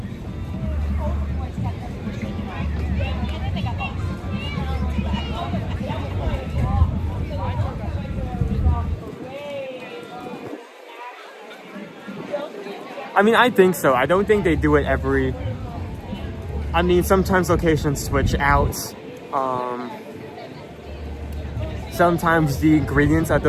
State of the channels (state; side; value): identical; both; correlation 1.00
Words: I mean, I think so. I don't think they do it every... I mean, sometimes locations switch out. Sometimes the ingredients at